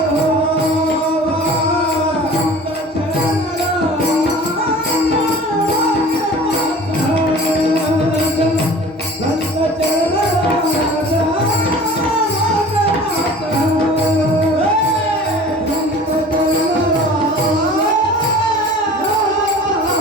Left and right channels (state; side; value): normal; both; correlation 0.43